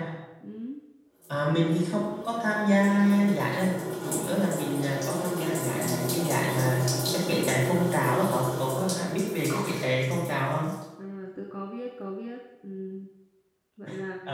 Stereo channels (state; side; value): identical; both; correlation 1.00